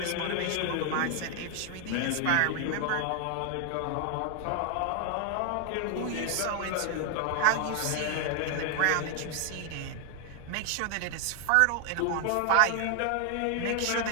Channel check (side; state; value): both; different; correlation 0.01